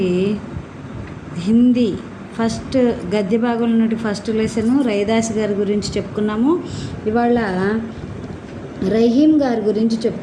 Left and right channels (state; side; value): identical; both; correlation 1.00